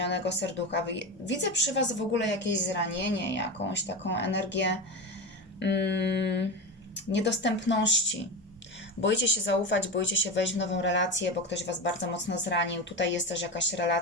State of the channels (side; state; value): both; normal; correlation 0.21